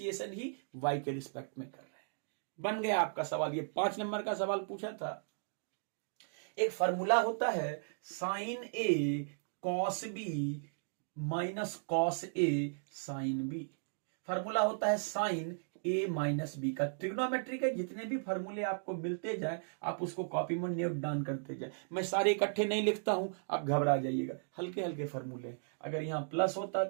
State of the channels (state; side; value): silent; left; digital silence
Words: ही y के रिस्पेक्ट में कर रहे हैं। बन गया आपका सवाल। ये 5 नंबर का सवाल पूछा था। एक फॉर्मूला होता है sign A cos B minus cos A sine B. Formula होता है साइन ए माइनस बी का। ट्रिग्नोमेट्री के जितने भी फॉर्मूले आपको मिलते जाए आप उसको कॉपी में नोट डाउन करते जाए। मैं सारे इकट्ठे नहीं लिखता हूं, आप घबरा जाइएगा, हल्के हल्के फॉर्मूले। अगर यहां प्लस होता